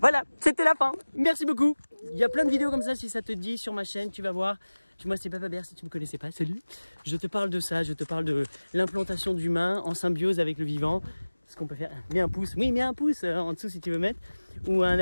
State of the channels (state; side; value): inverted; both; correlation -1.00